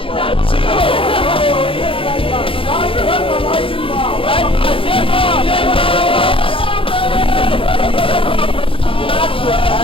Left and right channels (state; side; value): late; right; 0.26 ms